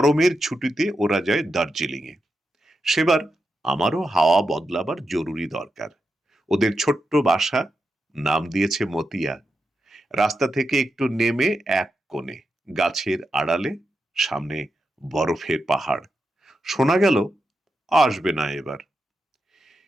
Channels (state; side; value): normal; both; correlation 0.87